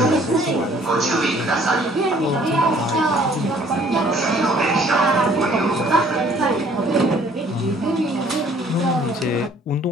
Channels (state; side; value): normal; both; correlation 0.58